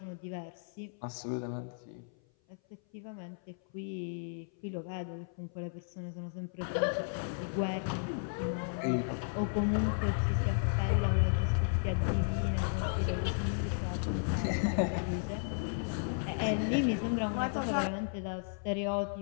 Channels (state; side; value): silent; right; 55 dB below the other